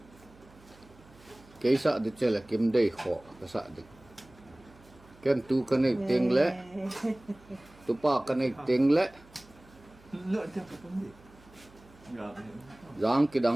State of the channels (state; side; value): noise; right; hum, 25 dB below the sound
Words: ke sa de che la kim dei kho ka sa de ken tu ka nei teng le tu pa ka nei teng le giang ki